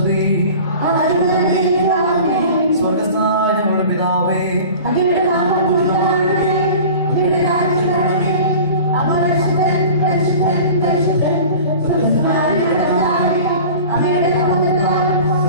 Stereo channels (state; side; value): inverted; both; correlation -0.40